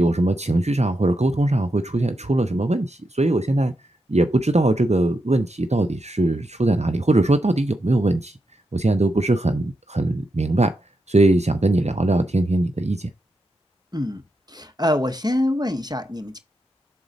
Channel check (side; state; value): both; normal; correlation 0.85